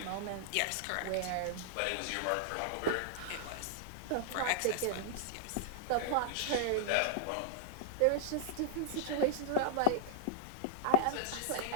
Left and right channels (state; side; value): different; both; correlation -0.01